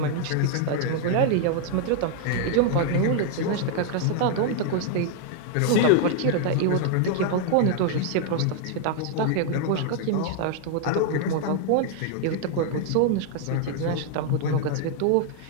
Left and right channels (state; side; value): different; both; correlation 0.00